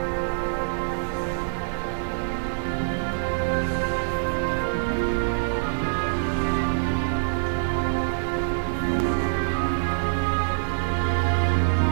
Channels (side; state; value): left; silent; 62 dB below the other